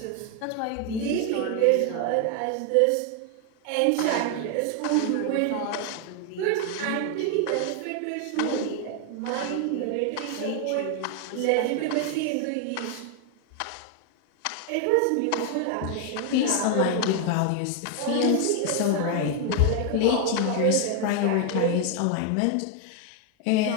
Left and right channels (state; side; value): different; both; correlation 0.00